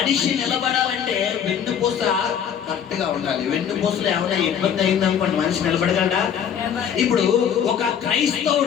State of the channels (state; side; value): quieter; right; 8.4 dB